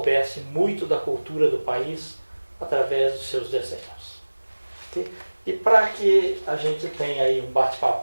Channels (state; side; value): inverted; both; correlation -1.00